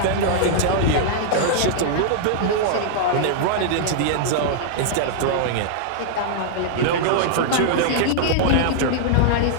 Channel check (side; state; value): both; different; correlation -0.01